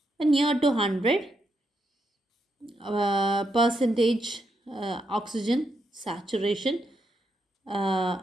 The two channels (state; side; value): normal; both; correlation 0.81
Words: near to 100% oxygen saturation